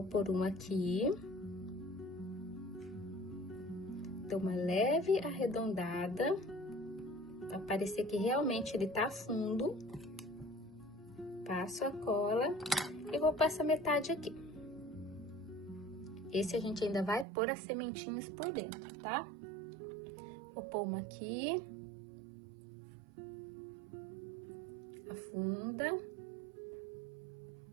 pôr uma aqui. Dou uma leve arredondada. Pra parecer que realmente ele tá fundo. Passo a cola e vou passar metade aqui. Esse a gente ainda vai pôr as sementinhas por dentro, tá? Vou pôr uma aqui, Afunda.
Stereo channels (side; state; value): left; drops out; at 17.2 s